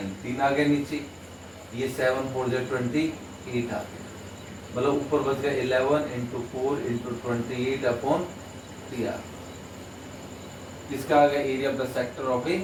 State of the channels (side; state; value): both; identical; correlation 1.00